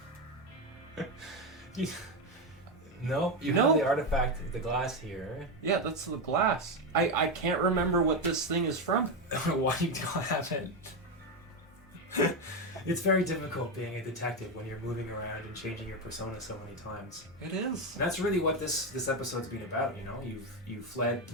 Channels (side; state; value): both; normal; correlation 0.11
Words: No, you have the artifact, the glass here. Yeah, that's the glass. I can't remember what this thing is from. Why you don't have it? It's very difficult being a detective when you're moving around and changing your persona so many times. It is. And that's really what this episode's been about. You've fled